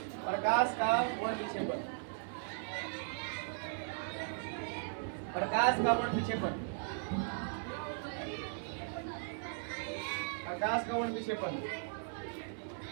प्रकाश का वर्ण विक्षेपण, प्रकाश का वर्ण विक्षेपण, प्रकाश का वर्ण विक्षेपण,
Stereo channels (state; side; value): silent; left; 53 dB below the other